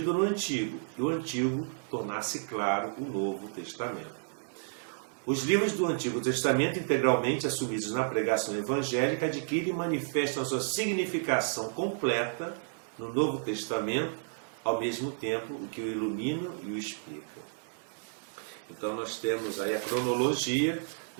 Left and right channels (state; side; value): silent; left; digital silence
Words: no Antigo e o Antigo tornasse claro o Novo Testamento. Os livros do Antigo Testamento, integralmente assumidos na pregação evangélica, adquirem e manifestam a sua significação completa no Novo Testamento, ao mesmo tempo o que o ilumina e o explica. Então nós temos aí a cronologia,